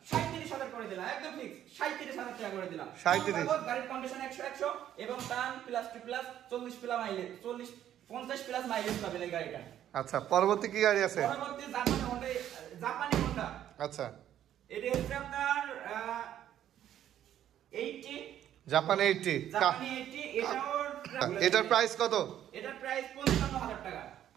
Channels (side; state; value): left; quieter; 11.1 dB